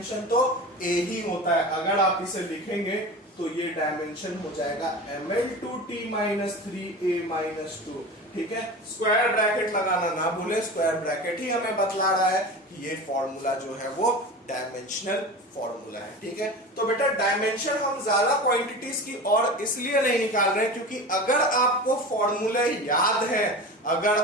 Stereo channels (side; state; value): both; normal; correlation 0.31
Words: तो A ही होता है। अगर आप इसे लिखेंगे तो ये डायमेंशन हो जाएगा ML2T माइनस 3A माइनस 2, ठीक है। स्क्वायर ब्रैकेट लगाना ना भूले, स्क्वायर ब्रैकेट ही हमें बतला रहा है कि ये फॉर्मूला जो है वो डायमेंशनल फॉर्मूला है, ठीक है। तो बेटा डायमेंशन हम ज्यादा क्वांटिटीज की और इसलिए नहीं निकाल रहे हैं क्योंकि अगर आपको फॉर्मूले याद है,